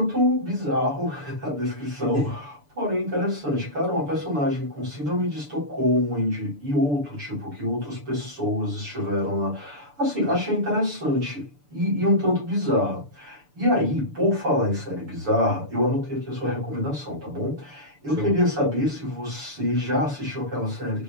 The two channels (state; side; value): late; left; 6.9 ms